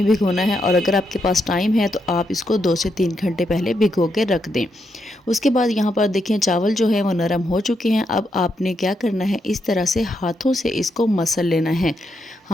भिगोना है और अगर आपके पास टाइम है तो आप इसको 2 से 3 घंटे पहले भिगो के रख दें। उसके बाद यहाँ पर देखें चावल जो है वो नरम हो चुके हैं। अब आपने क्या करना है, इस तरह से हाथों से इसको मसल लेना है।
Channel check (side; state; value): both; normal; correlation 0.81